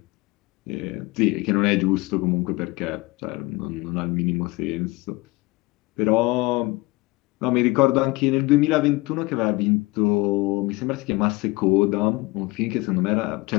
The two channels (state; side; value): quieter; right; 22.4 dB